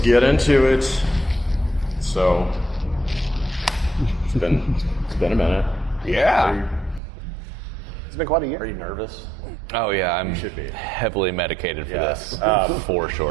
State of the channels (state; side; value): drops out; left; at 7.0 s